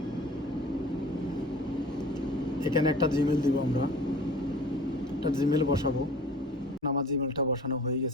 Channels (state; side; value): normal; both; correlation 0.44